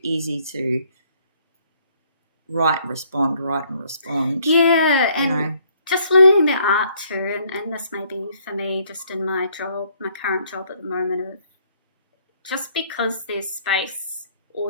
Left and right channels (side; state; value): both; inverted; correlation -0.65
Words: easy to write and respond. Yeah, and just learning the art too, and this may be for me just in my current job at the moment, of just because there's space